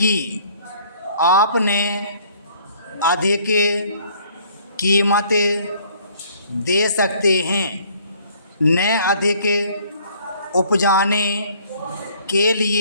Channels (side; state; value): both; inverted; correlation -0.59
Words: आपने अधिक कीमत दे सकते हैं। न अधिक उपजाने के